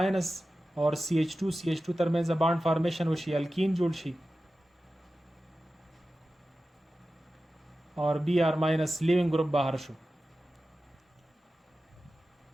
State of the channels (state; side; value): normal; both; correlation 0.94